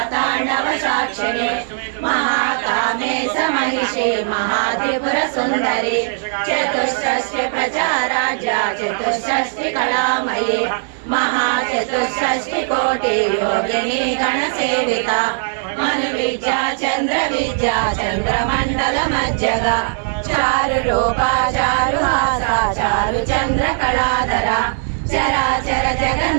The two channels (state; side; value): silent; left; digital silence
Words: साक्षिणे महाकामे महिषी महात्रिपुर सुंदरी चतुष्षष्टि प्रचाराज्या चतुष्षष्टि कलामयी महाचतुष्षष्टि कोटि योगिनी गणसेविता मनुविद्या चंद्रविद्या चंद्रमंडल मज्जगा चारु रूपा चारु हासा चारु चंद्र कलाधरा चराचर